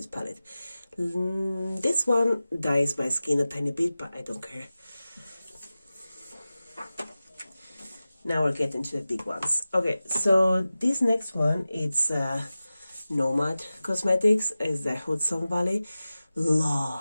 palette. This one dyes my skin a tiny bit, but I don't care. Now we're getting to the big ones. Okay, so this next one, it's Nomad Cosmetics, is the Hudson Valley.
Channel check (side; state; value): both; inverted; correlation -0.96